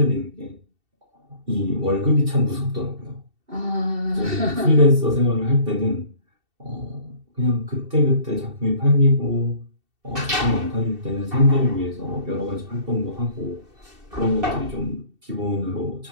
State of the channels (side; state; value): left; late; 2.7 ms